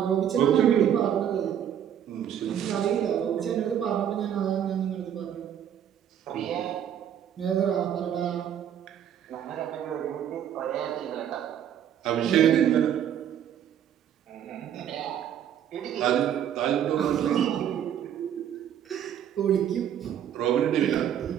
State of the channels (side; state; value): left; quieter; 9.7 dB